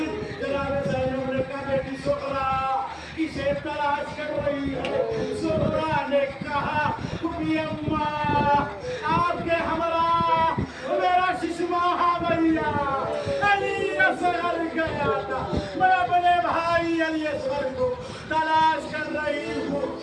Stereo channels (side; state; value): both; identical; correlation 1.00